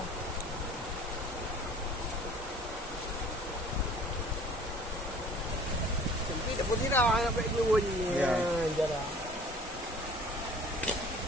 Sampai dapat tidak sampai dulu ni. Ya, jarang.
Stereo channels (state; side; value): normal; both; correlation 0.49